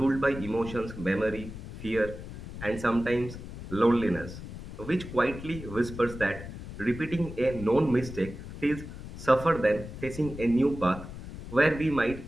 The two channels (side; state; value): left; noise; rumble, 11 dB below the sound